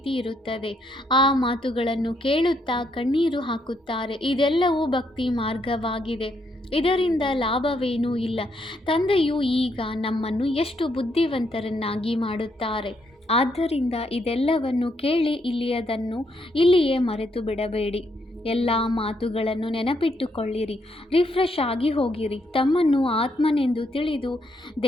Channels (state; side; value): normal; both; correlation 0.75